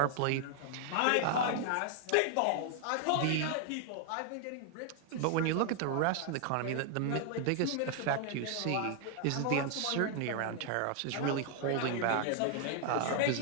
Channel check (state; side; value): different; both; correlation 0.00